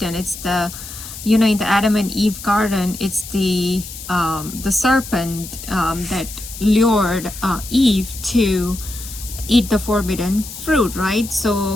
It's the, in the Adam and Eve garden, it's the serpent that lured Eve to eat the forbidden fruit, right?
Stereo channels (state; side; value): noise; left; hiss, 12 dB below the sound